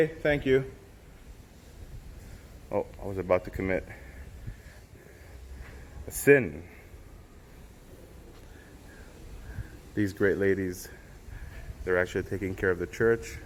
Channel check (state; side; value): identical; both; correlation 1.00